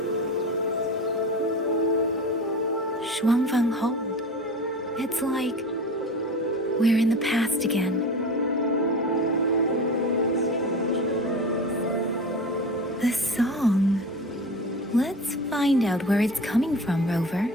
Shuangfeng Hold. It's like we're in the past again. The song. Let's find out where it's coming from, Rover.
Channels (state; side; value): normal; both; correlation 0.32